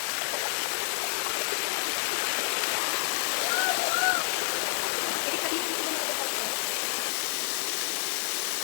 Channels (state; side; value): silent; right; digital silence